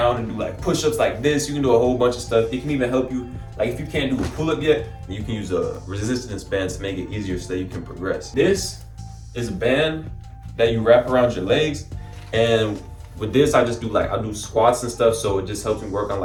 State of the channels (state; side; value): identical; both; correlation 1.00